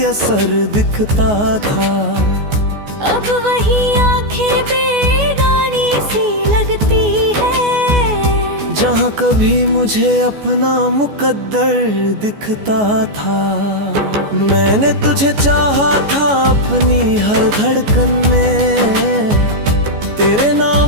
असर दिखता था। अब वही आंखें बेगानी सी लगती है, जहाँ कभी मुझे अपना मुकद्दर दिखता था। मैंने तुझे चाहा था अपनी हर धड़कन में, तेरे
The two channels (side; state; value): left; late; 14 ms